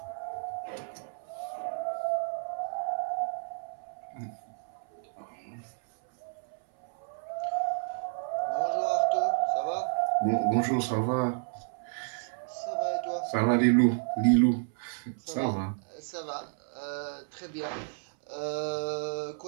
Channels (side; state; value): left; silent; 57 dB below the other